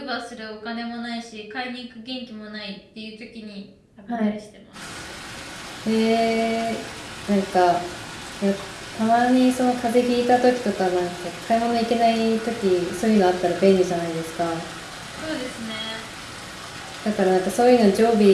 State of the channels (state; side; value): identical; both; correlation 1.00